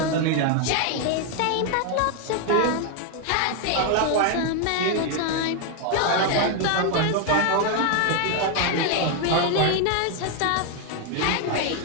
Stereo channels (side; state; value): both; different; correlation 0.01